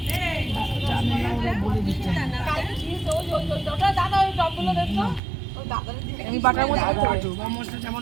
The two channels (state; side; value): drops out; left; at 5.2 s